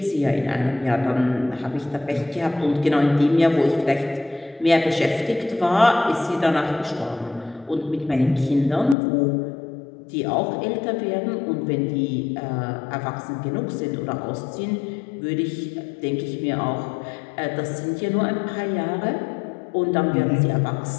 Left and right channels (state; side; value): drops out; right; at 9.0 s